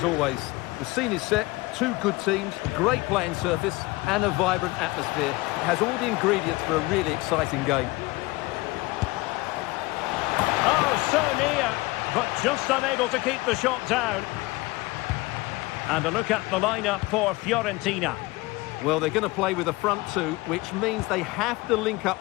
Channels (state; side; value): quieter; right; 21.9 dB